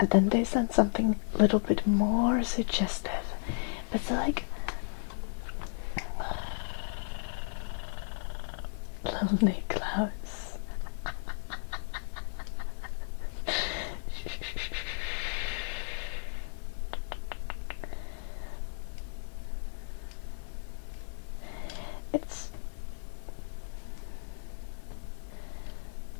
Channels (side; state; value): right; silent; digital silence